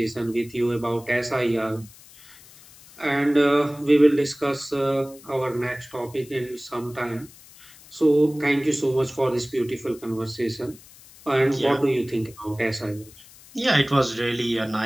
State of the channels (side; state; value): left; noise; hiss, 22 dB below the sound